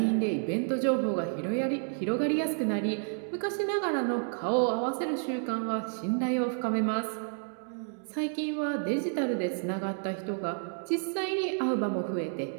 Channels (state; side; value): silent; left; 58 dB below the other